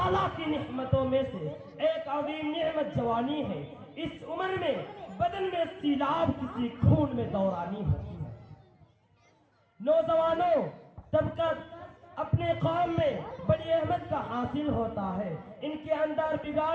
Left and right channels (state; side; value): identical; both; correlation 1.00